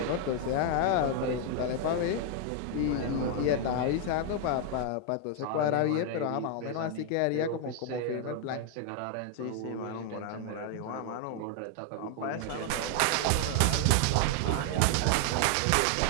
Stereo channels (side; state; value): both; different; correlation 0.00